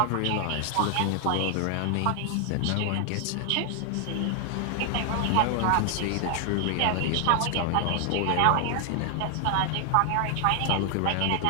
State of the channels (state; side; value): different; both; correlation 0.00